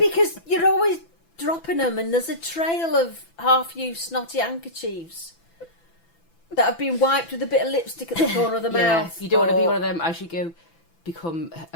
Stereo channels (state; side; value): late; right; 6.0 ms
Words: you're always dropping them, and there's a trail of half-used snotty handkerchiefs that have been wiped with a bit of lipstick at the corner of the mouth. You don't want to be or- one of them as you go become